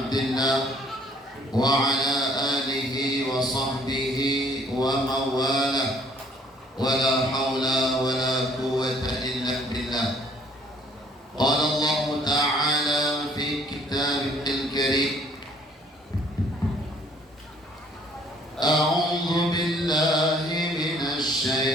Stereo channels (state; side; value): normal; both; correlation 0.60